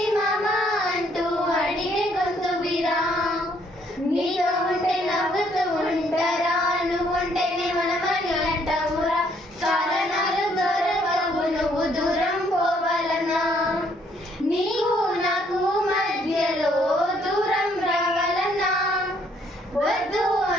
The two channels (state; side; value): normal; both; correlation 0.67